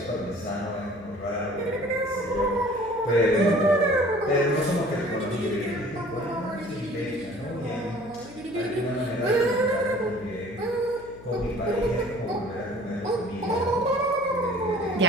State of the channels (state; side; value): noise; left; hum, 20 dB below the sound